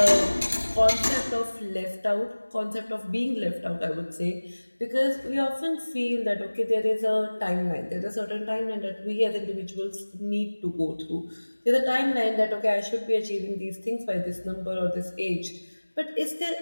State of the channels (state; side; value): inverted; both; correlation -1.00